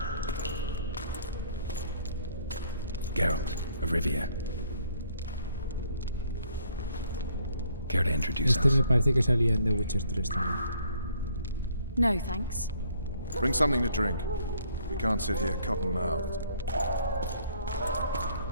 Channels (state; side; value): inverted; both; correlation -0.64